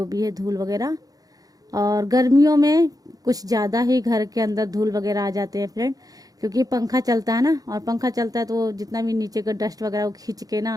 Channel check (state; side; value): late; left; 0.18 ms